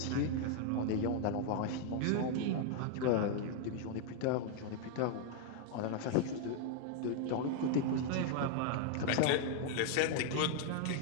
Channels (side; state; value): both; different; correlation 0.00